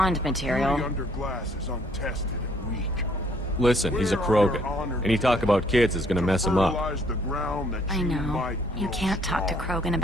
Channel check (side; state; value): both; normal; correlation 0.64